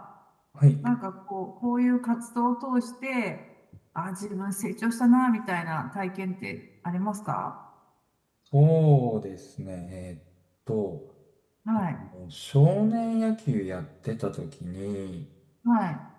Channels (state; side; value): identical; both; correlation 1.00